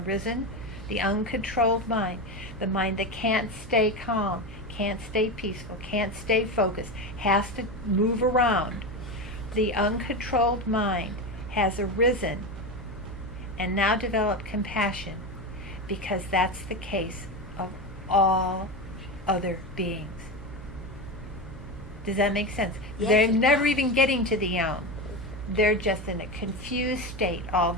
the uncontrolled mind, the mind that can't stay calm, can't stay peaceful, can't stay focused, has to move around. The uncontrolled mind has arisen and now developed compassion, because that's the case of all other beings. Does that make sense? Yes, They're it never does. even getting to the Om. They're just in a confused state all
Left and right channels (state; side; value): normal; both; correlation 0.19